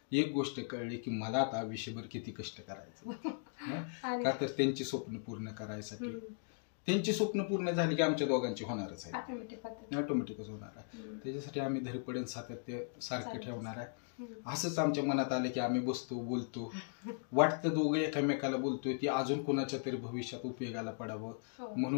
एक गोष्ट कळली की मला आता आयुष्यभर किती कष्ट करायचं. का तर त्यांची स्वप्न पूर्ण करायसाठी. त्यांची स्वप्न पूर्ण झाली की आमच्या दोघांची होणारच आहे, ऑटोमॅटिकच होणार आहे. त्याच्यासाठी आम्ही धडपडण सातत्य सारखं ठेवणार आहे. असंच आमच्या मनात आलं की आम्ही बसतो, बोलतो, वाटतं दोघं एकामेकाला बोलतोय ती अजून कोणाच्या तरी भविष्यात उपयोगाला पडावं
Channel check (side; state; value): right; silent; digital silence